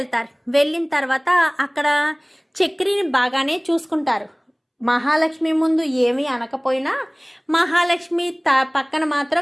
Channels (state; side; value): identical; both; correlation 1.00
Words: వెళ్ళిన తర్వాత అక్కడ చక్రిని బాగానే చూసుకుంటారు. మహాలక్ష్మి ముందు ఏమీ అనకపోయినా మహాలక్ష్మి పక్కన